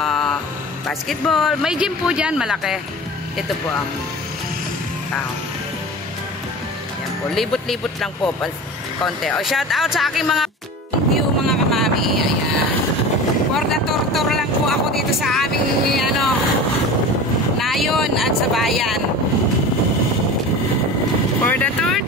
basketball. May gym po dyan, malaki. Ito po ang town. Yan po. Libot-libot lang po. Konti. O, shout out sa aking mga view mga kamami. Ayan. For the tour lang po ako dito sa aming nayon at sa bayan. For the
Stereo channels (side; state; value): both; normal; correlation 0.34